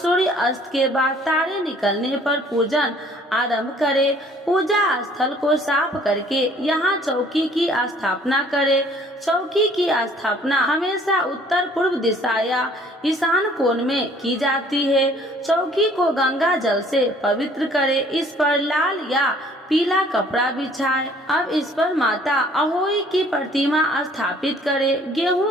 अस्त के बाद तारे निकलने पर पूजन आरंभ करें। पूजा स्थल को साफ करके यहाँ चौकी की स्थापना करें। चौकी की स्थापना हमेशा उत्तर पूर्व दिशा या ईशान कोण में की जाती है। चौकी को गंगा जल से पवित्र करें। इस पर लाल या पीला कपड़ा बिछाए। अब इस पर माता अहोई की प्रतिमा स्थापित करे।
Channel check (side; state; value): both; normal; correlation 0.57